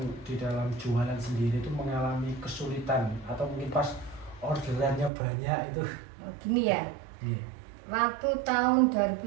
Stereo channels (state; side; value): drops out; left; at 5.1 s